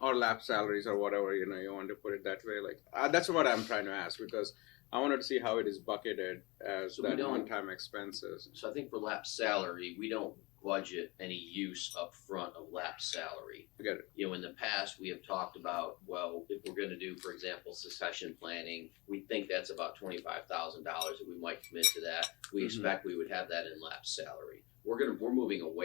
Or lap salaries or whatever, you know, you want to put it that way. Like that's what I'm trying to ask, because I wanted to see how it is bucketed as So we that don't- one-time expenses. so I think for lap salary, we don't budget any use up front of lap salary. I get it. You know, in the past, we have talked about, well, if we're gonna do, for example, succession planning, we think that's about $25,000 that we might commit to that. We expect we would have that in lap salary. We're moving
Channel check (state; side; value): quieter; right; 25.0 dB